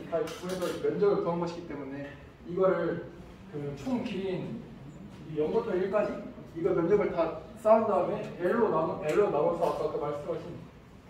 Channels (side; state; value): both; identical; correlation 1.00